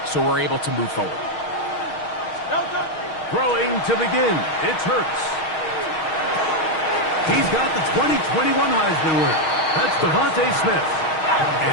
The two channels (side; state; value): right; late; 6.4 ms